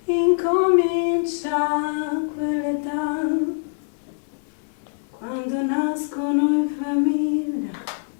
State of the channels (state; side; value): silent; right; 56 dB below the other